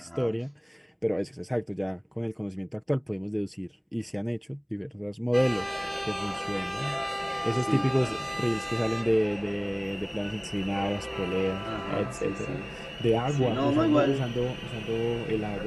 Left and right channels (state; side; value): identical; both; correlation 1.00